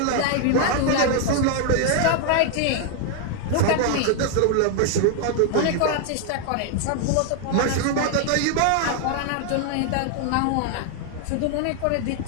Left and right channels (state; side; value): different; both; correlation 0.00